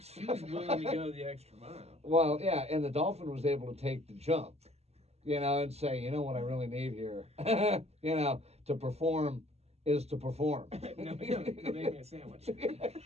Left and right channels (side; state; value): left; late; 0.30 ms